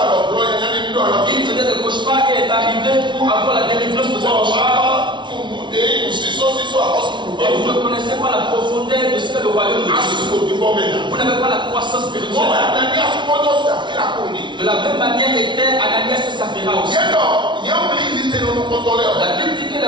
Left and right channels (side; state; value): left; late; 0.23 ms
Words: Il faisait des cauchemars et est arrivé pour avoir la délivrance de son cauchemar. Et vous ne connaissez pas la profondeur de ce que le royaume de Dieu. Vous n'avez pas la croissance spirituelle. De la même manière était Ananias et Saphira aussi. La Bible dit que